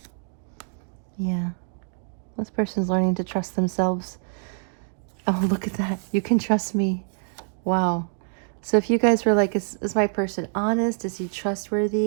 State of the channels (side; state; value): left; silent; 57 dB below the other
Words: Yeah. This person's learning to trust themselves. Oh, look at that. You can trust me. Wow. So if you guys were like, is my person honest? Is he